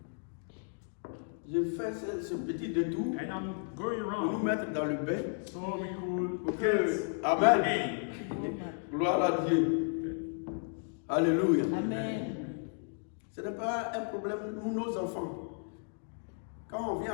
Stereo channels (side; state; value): right; silent; 55 dB below the other